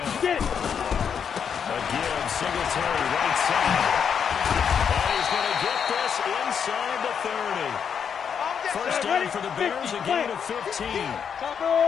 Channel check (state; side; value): quieter; right; 7.3 dB